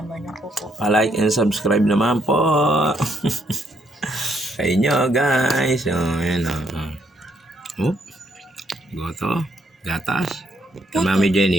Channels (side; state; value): both; normal; correlation 0.72